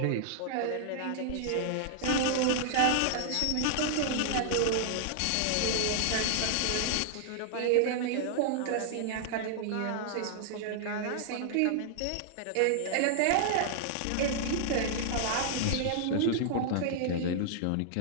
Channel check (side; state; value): both; different; correlation -0.01